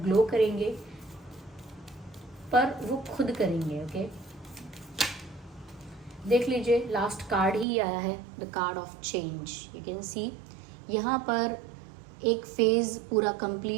करेंगे, पर वो खुद करेंगे। ओके, देख लीजिए, लास्ट कार्ड ही आया है, the card of change. You can see यहाँ पर एक फेज़ पूरा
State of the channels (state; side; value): drops out; left; at 7.7 s